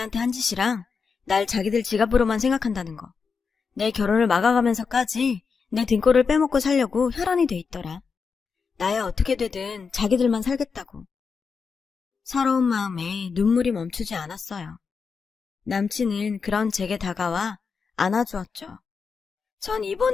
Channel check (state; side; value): quieter; right; 5.4 dB